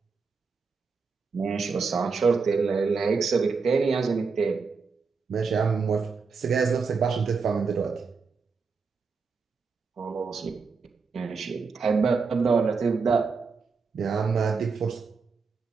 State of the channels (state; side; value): quieter; left; 5.0 dB